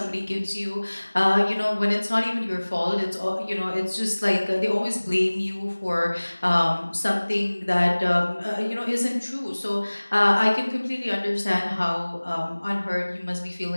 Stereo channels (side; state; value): both; inverted; correlation -1.00